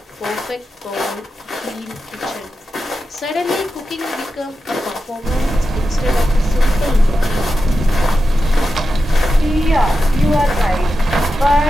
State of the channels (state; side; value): normal; both; correlation 0.90